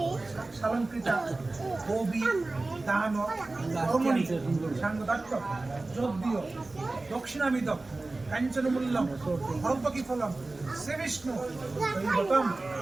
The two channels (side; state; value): left; quieter; 3.2 dB